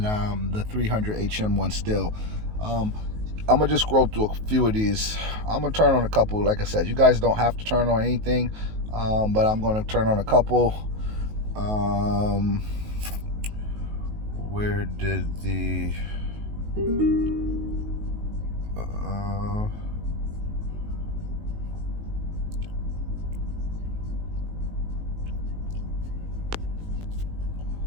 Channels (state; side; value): late; left; 19 ms